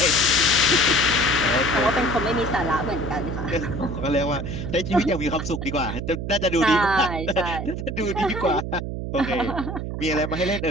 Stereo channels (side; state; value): right; noise; hum, 5 dB below the sound